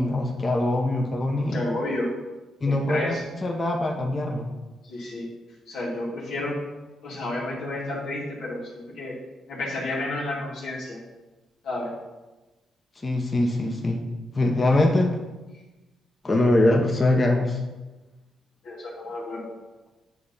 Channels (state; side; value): normal; both; correlation 0.86